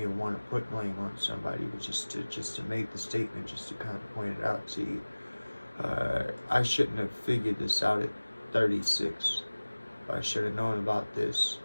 to want to put blame on somebody, but just to make the statement, just to kind of point it out to you. I shouldn't have figured this out at 36. I should have known about this.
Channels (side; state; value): both; inverted; correlation -1.00